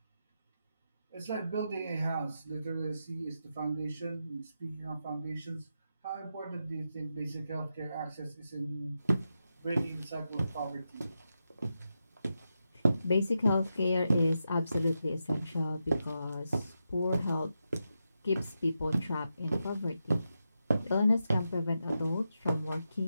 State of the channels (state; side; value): inverted; both; correlation -0.87